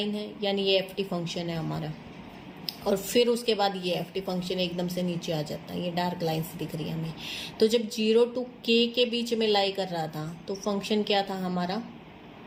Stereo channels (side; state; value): both; identical; correlation 1.00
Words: है यानी ये एफ टी फंक्शन है हमारा, और फिर उसके बाद ये एफ टी फंक्शन एकदम से नीचे आ जाता है, ये डार्क लाइन्स दिख रही है हमें। तो जब 0 to k के बीच में लाई कर रहा था तो फंक्शन क्या था हमारा,